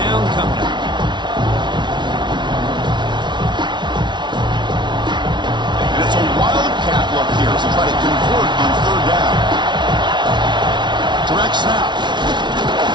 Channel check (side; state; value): left; late; 0.22 ms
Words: coming up. And it's a wildcat look here as they try to convert on 3rd down. Direct snap.